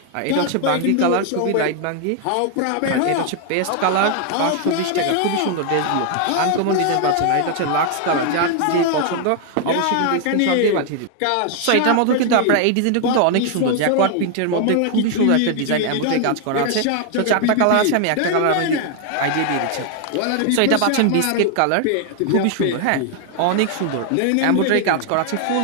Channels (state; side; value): different; both; correlation 0.00